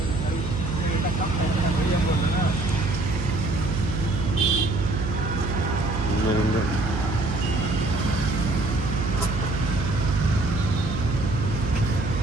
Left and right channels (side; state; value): right; noise; hum, 4 dB below the sound